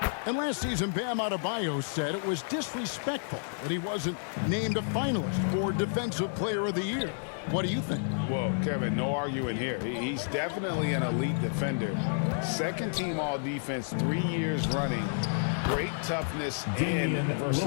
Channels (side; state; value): right; silent; digital silence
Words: And last season, Bam Adebayo said it was disrespectful that he wasn't named a finalist for Defensive Player of the Year. What do you think? Well, Kevin, no arguing here. He's definitely an elite defender. Second team all defense 3 years running. Great toughness and